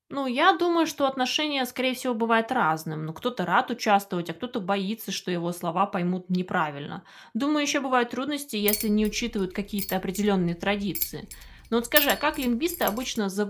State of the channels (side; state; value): both; identical; correlation 1.00